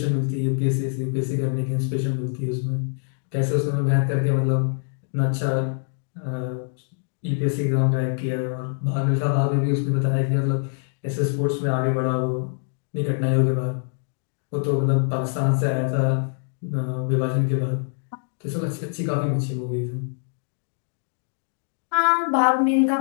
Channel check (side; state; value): right; silent; digital silence